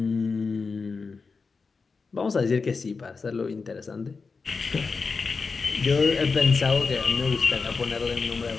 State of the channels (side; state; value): right; quieter; 4.6 dB